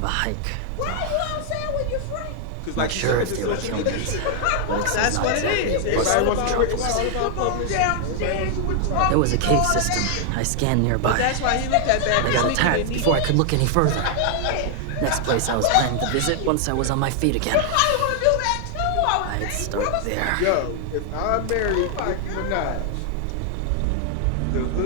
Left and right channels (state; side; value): different; both; correlation 0.00